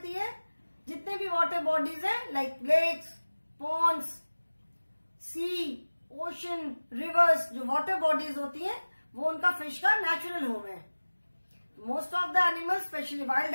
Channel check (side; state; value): both; inverted; correlation -1.00